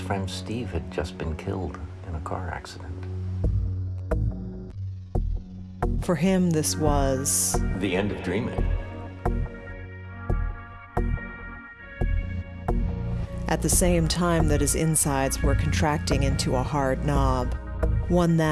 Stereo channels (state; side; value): identical; both; correlation 1.00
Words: friend Steve had just been killed in a car accident. For him, this was the end of dreaming. At the same time that his insides were contracting into a hard knob, one